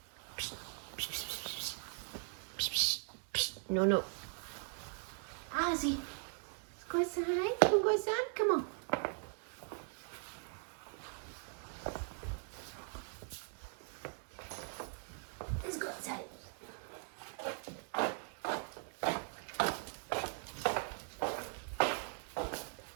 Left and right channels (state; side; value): silent; left; 51 dB below the other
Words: Psst, psst, psst, psst, psst, psst, psst. No, no. Ozzy, let's go outside. Come on, go outside. Come on. Let's go outside.